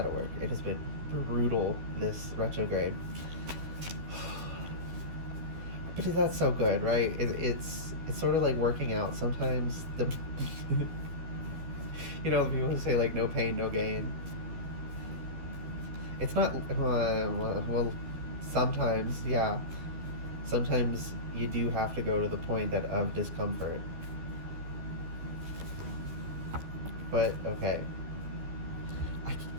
work. It has been brutal, this retrograde. But that's so good, right? It's sort of like working out. Sometimes the the people who say like no pain, no gain. It's not well. Sometimes, yeah. Sometimes you do have to go to the point of discomfort. But okay.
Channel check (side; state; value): left; late; 12 ms